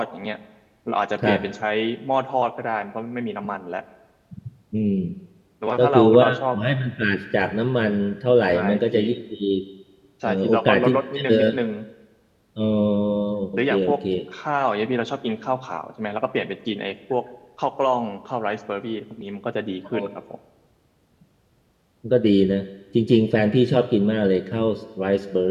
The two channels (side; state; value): both; identical; correlation 1.00